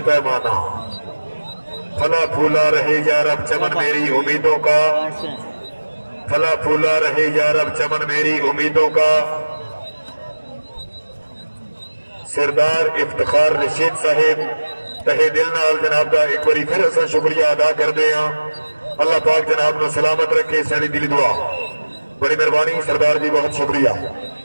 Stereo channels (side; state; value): both; inverted; correlation -1.00